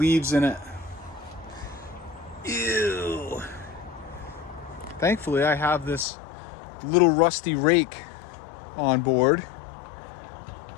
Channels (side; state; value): right; drops out; at 6.1 s